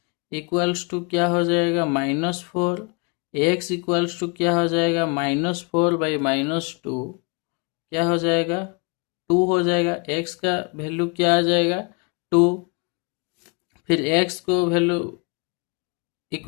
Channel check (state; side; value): quieter; right; 31.8 dB